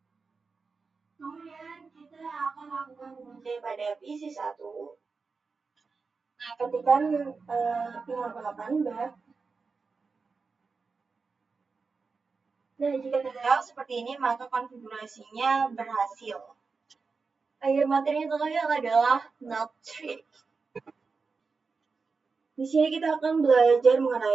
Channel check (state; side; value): quieter; left; 4.6 dB